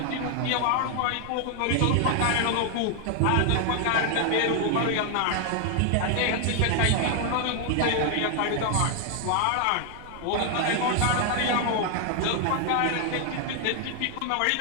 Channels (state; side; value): different; both; correlation 0.00